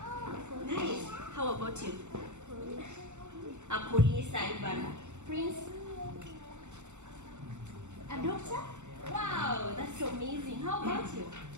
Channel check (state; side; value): late; left; 0.84 ms